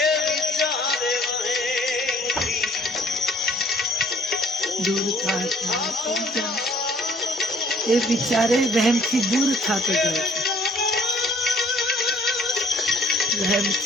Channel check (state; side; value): normal; both; correlation 0.57